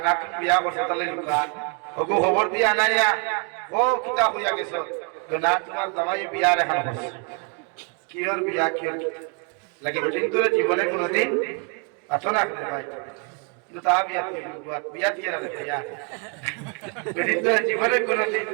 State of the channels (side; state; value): left; quieter; 36.4 dB